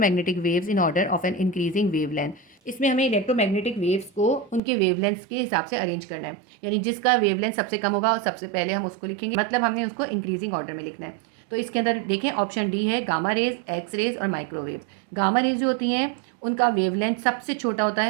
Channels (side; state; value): left; drops out; at 4.6 s